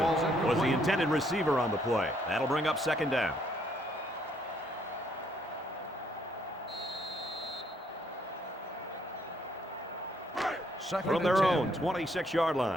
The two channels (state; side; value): normal; both; correlation 0.69